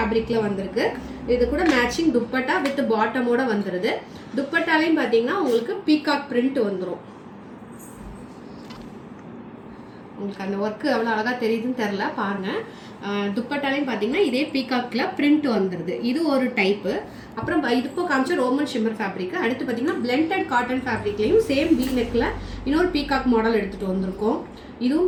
வந்திருக்கு. இது கூட மேட்சிங் துப்பட்டா வித் பாட்டமோட வந்துருது. துப்பட்டாலையும் பார்த்தீங்கன்னா உங்களுக்கு பீகாக் பிரிண்ட் வந்துடும். உங்களுக்கு அந்த ஒர்க்கு எவ்வளோ அழகாக தெரியுதுன்னு தெரில பாருங்க. துப்பட்டாலையும் பார்த்தீங்கன்னா இதே பீகாக்ல பிரிண்ட் வந்துடுது. இது ஒரு டைப்பு. அப்புறம் இது இப்போ காமிச்ச ரோமன் ஷிம்மர் ஃபேப்ரிக். அடுத்து பார்த்தீங்கன்னா பிளெண்டட் காட்டன் ஃபேப்ரிக்லையும் சேம் வி நெக்ல இன்னொரு பீகாக் மாடல் எடுத்துகிட்டு வந்திருக்கோம்.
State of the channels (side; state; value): both; identical; correlation 1.00